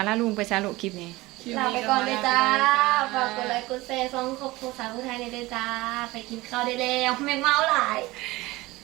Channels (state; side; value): quieter; left; 20.2 dB